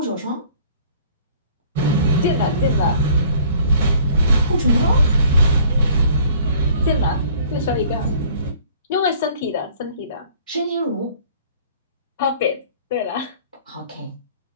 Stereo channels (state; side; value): inverted; both; correlation -0.53